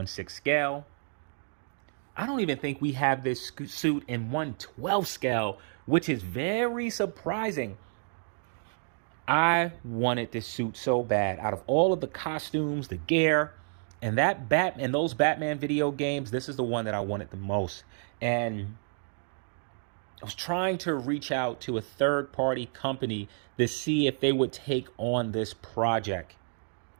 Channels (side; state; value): left; silent; 58 dB below the other